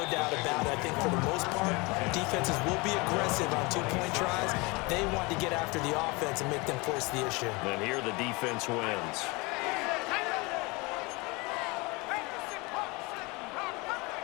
doubt about it. I think for the most part, defenses will be aggressive on 2-point tries. They want to get after the offense and make them force the issue. And here the defense wins.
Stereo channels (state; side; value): quieter; right; 26.0 dB